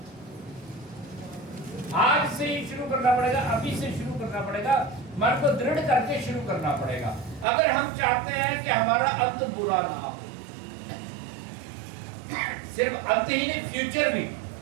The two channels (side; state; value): left; drops out; at 7.5 s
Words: आज से ही शुरू करना पड़ेगा, अभी से शुरू करना पड़ेगा, मन को दृढ़ करके शुरू करना पड़ेगा। अगर हम चाहते हैं कि हमारा अंत बुरा ना हो, सिर्फ अंत ही नहीं फ्यूचर भी